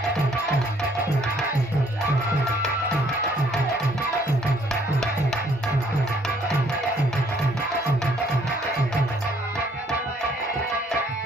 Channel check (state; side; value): normal; both; correlation 0.64